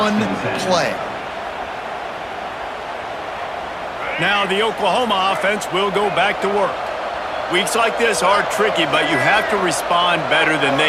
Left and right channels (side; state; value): both; identical; correlation 1.00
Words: play. Now the Oklahoma offense will go back to work. Weeks like this are tricky, but you have to respond better than